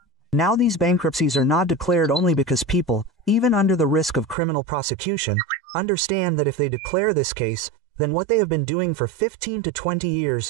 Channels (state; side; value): drops out; left; at 4.4 s